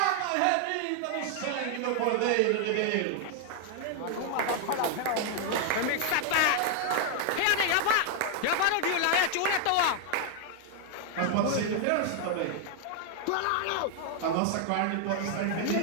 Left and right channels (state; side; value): different; both; correlation 0.00